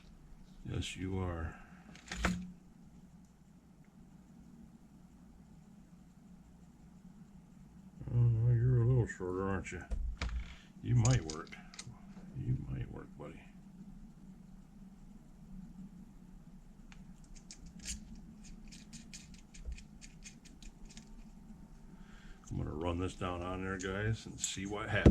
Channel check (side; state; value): both; identical; correlation 1.00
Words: Yes, you are. Oh, no, you're a little shorter, aren't you? You might work. You might work, buddy. I'm going to run this down on there, guys, and see what